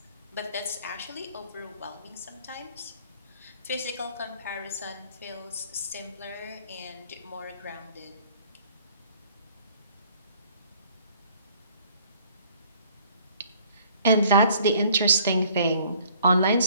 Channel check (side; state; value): both; inverted; correlation -0.57